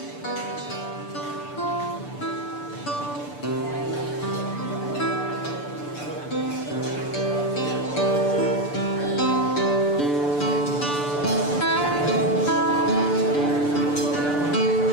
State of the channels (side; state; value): right; late; 6.9 ms